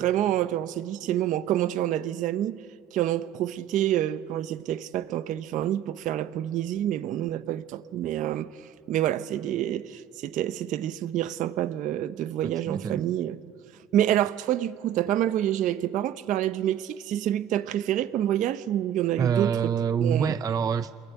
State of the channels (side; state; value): left; quieter; 10.7 dB